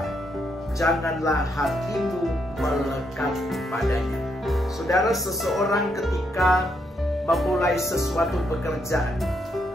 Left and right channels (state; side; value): normal; both; correlation 0.77